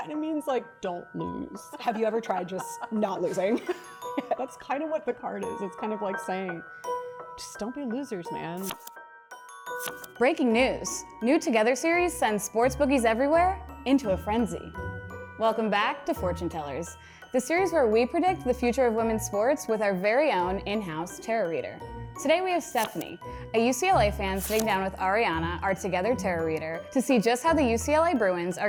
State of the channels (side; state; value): both; identical; correlation 1.00